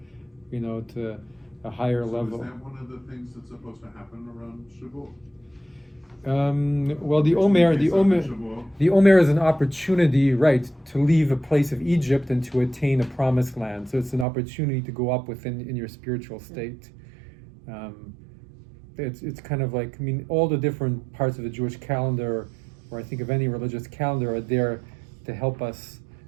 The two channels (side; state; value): left; drops out; at 14.2 s